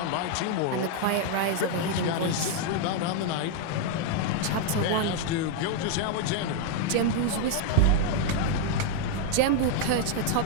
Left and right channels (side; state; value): both; different; correlation 0.00